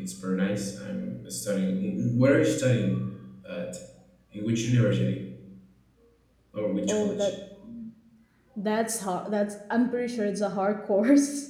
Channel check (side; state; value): both; identical; correlation 1.00